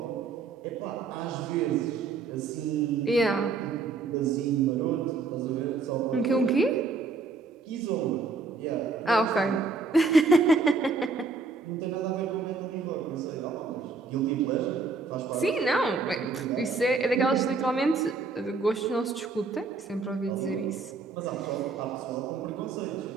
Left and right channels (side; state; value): left; quieter; 4.2 dB